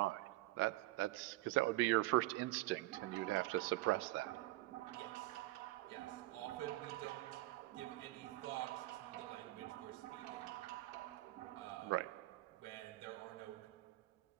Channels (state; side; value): quieter; left; 18.6 dB